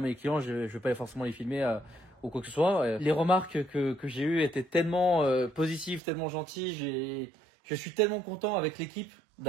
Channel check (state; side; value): drops out; left; at 6.0 s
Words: les clients, je vais pas forcément les filmer ou quoi que ce soit. Les remarques que j'ai eues étaient tellement positives, tellement gentilles. Je suis tellement content avec l'équipe